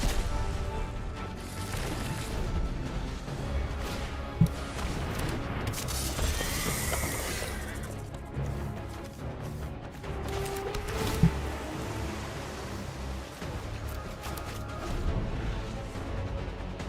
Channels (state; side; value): identical; both; correlation 1.00